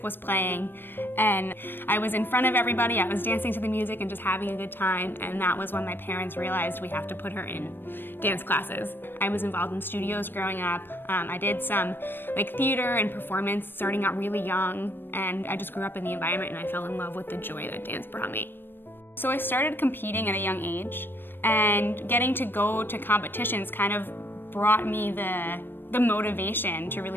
was playing, and I was in front of everybody. I was dancing to the music and just having a good time, and that was when my parents realized we have to put her in dance classes. I was involved in studios growing up. I did some theater and performance starting out really young, and I just grew up in the environment and I fell in love with the joy that dance brought me. So I started competing at a young age, and getting to go to competitions kind of brought me the motivation to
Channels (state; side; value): late; right; 0.097 ms